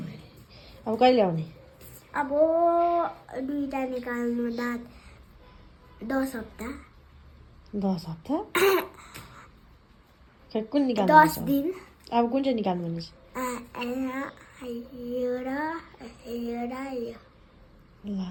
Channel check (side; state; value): both; identical; correlation 1.00